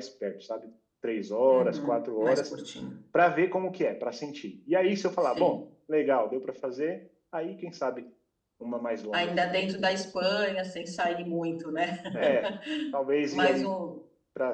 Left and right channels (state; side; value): identical; both; correlation 1.00